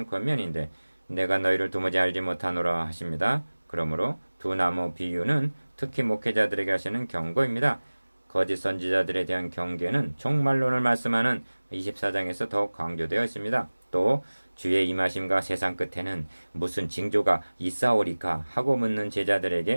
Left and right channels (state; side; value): inverted; both; correlation -1.00